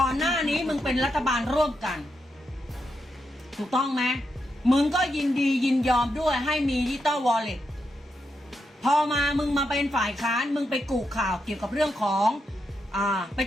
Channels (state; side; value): normal; both; correlation 0.84